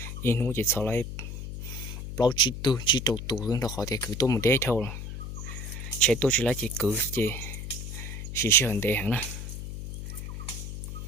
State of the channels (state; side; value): noise; left; hum, 7 dB below the sound